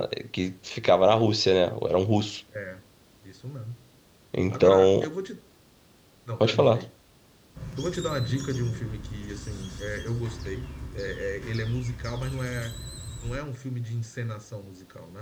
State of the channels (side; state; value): both; identical; correlation 1.00